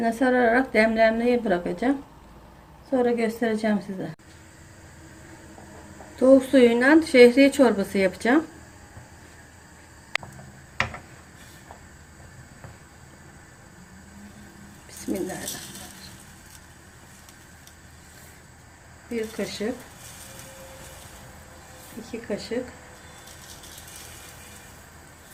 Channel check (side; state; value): both; identical; correlation 1.00